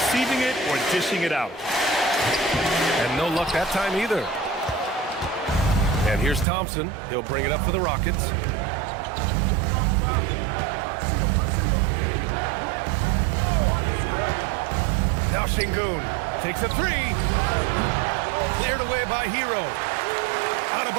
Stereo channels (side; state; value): left; drops out; at 6.5 s